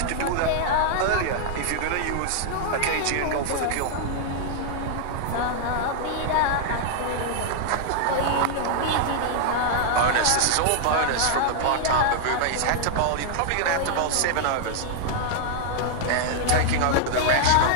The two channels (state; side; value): different; both; correlation -0.01